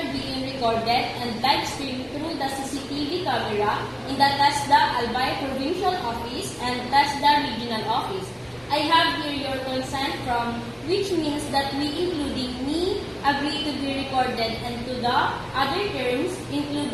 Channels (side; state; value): both; identical; correlation 1.00